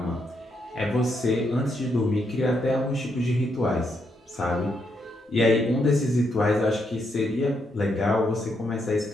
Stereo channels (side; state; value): both; normal; correlation 0.78